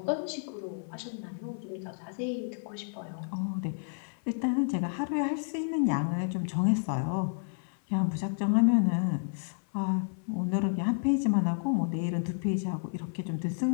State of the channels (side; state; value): right; silent; 57 dB below the other